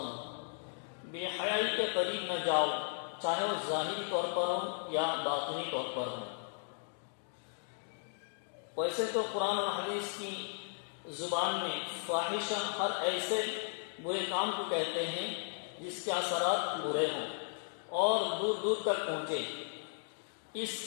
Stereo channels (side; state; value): right; silent; digital silence